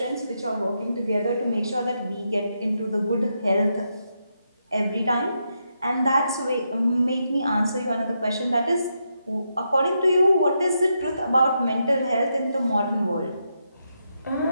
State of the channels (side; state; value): both; inverted; correlation -0.82